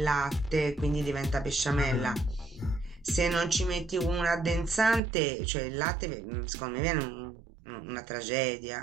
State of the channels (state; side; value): drops out; left; at 5.0 s